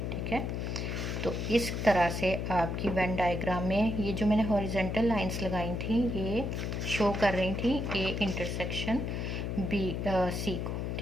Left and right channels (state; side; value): noise; left; hum, 2 dB below the sound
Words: ठीक है। तो इस तरह से आपकी वेन डायग्राम में ये जो मैंने हॉरिजेंटल लाइंस लगाई थी ये शो कर रही थी ए इंटरसेक्शन बी सी को,